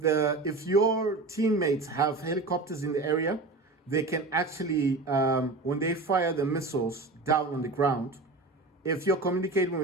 your teammates have helicopters in the area, they can actually when they fire the missiles down on the ground, if you're communicating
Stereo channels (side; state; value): left; quieter; 3.4 dB